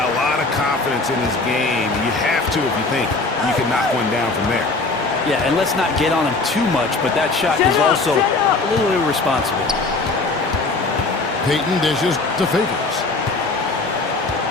lot of confidence in his game. You have to if you think you can knock one down from there. Yeah, and let's not get on him too much, but that shot is also a little irresponsible. Payton dishes to Favors.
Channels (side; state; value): right; quieter; 3.5 dB